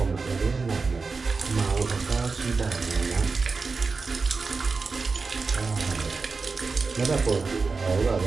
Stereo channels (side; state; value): left; quieter; 4.4 dB